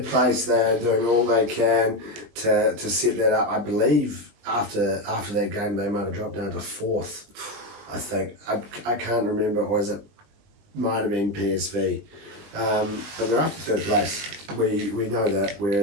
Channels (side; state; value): left; late; 20 ms